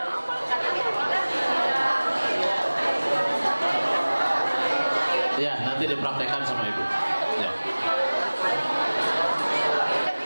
Ya, nanti dipraktekkan sama Ibu. Ya.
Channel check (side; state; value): both; inverted; correlation -1.00